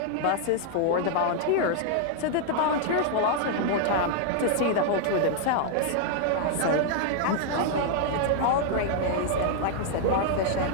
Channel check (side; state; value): both; different; correlation -0.01